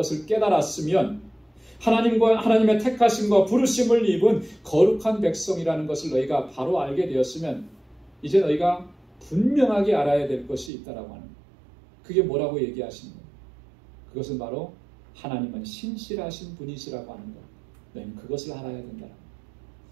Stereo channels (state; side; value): drops out; left; at 10.7 s